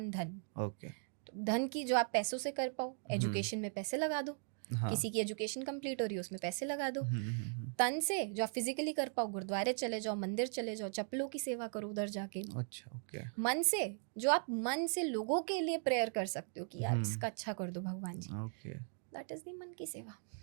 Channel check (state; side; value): silent; left; 52 dB below the other